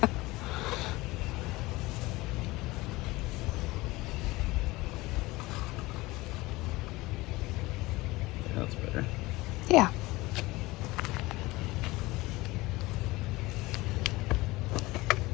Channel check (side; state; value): right; quieter; 20.6 dB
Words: That's better. Yeah.